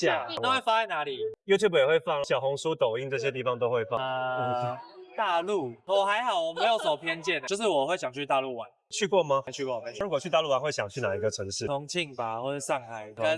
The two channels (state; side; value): identical; both; correlation 1.00